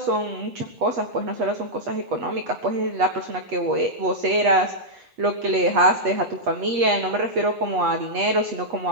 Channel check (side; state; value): left; late; 8.3 ms